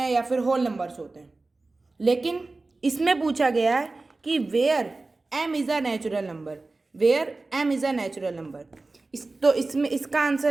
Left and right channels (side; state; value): left; quieter; 3.4 dB